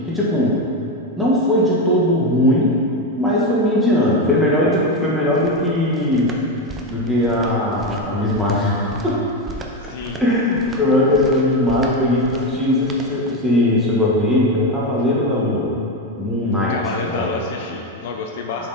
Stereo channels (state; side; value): normal; both; correlation 0.12